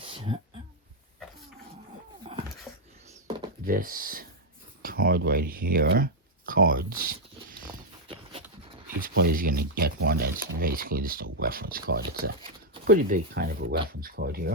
this card right here. Cards. Each player is going to get one that's basically just a reference card. It's a pretty big kind of a reference card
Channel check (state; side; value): normal; both; correlation -0.01